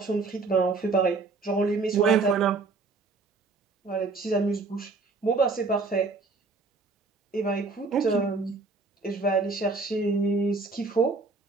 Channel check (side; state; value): left; quieter; 3.9 dB